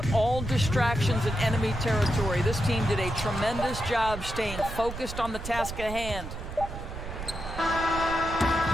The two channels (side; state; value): right; noise; rumble, 8 dB below the sound